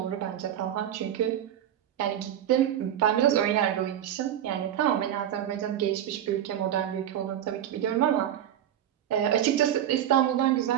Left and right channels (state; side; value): quieter; left; 10.7 dB